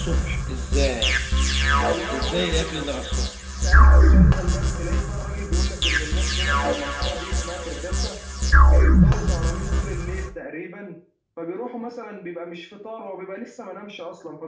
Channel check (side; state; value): both; identical; correlation 1.00